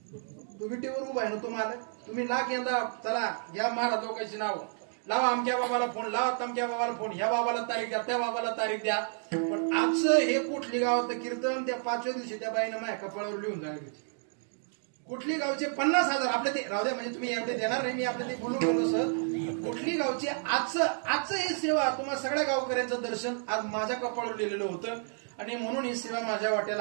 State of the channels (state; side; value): silent; left; 57 dB below the other